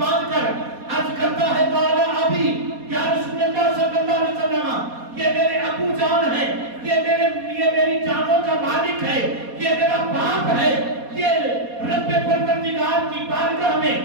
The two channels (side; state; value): left; late; 4.2 ms